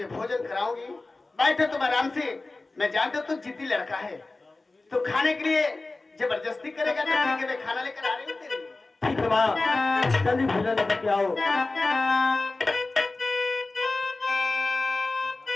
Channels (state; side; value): quieter; right; 3.3 dB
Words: भोजन कराऊंगी। बैठे तुम आराम से, मैं जानता हूं तू जिद्दी लड़का है, तो खाने के लिए जबरदस्ती करेगा तो ठीक है, मैं खाना लेकर आ रही हूँ तेरे लिए। ठीक है माँ, जल्दी भोजन लेकर के आओ।